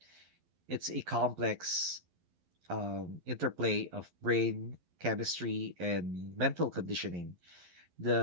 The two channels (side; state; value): left; late; 11 ms